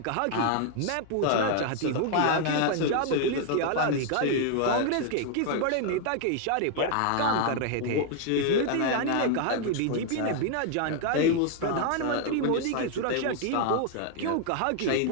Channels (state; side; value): different; both; correlation 0.00